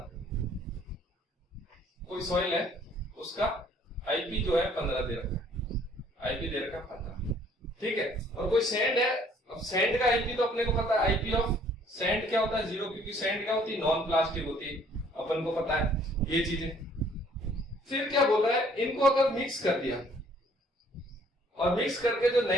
कोई सॉइल है उसका आईपी जो है 15 दे रखा है, आईपी दे रखा है 15। ठीक है, और कोई सैंड है, अब सैंड का आईपी तो अपने को पता है, आईपी ऑफ सैंड क्या होता है 0, क्योंकि सैंड क्या होती है नॉन प्लास्टिक होती है, अपन को पता है ये चीजें। फिर क्या बोल रहा है, इनको अगर मिक्स कर दिया और मिक्स करके जो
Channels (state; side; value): normal; both; correlation 0.60